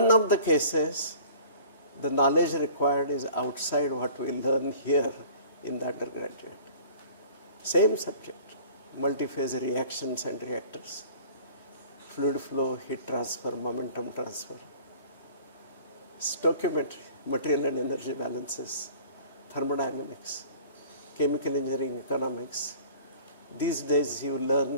of the cases, the knowledge required is outside what we learn here in the undergraduate. Same subject, multi-phase reactions and reactors, fluid flow, heat transfer, momentum transfer, stoichiometry, material and energy balances, thermodynamics, chemical engineering, economics. These days you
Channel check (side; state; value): both; inverted; correlation -0.48